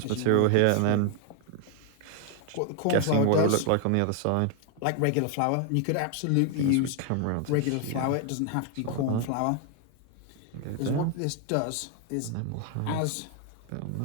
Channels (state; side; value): different; both; correlation 0.00